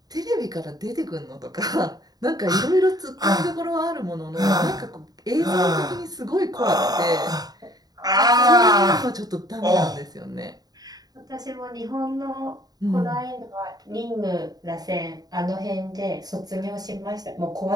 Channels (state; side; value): late; left; 0.19 ms